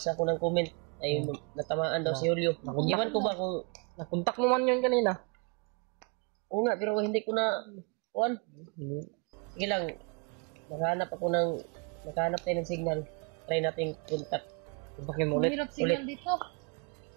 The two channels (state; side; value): quieter; left; 33.4 dB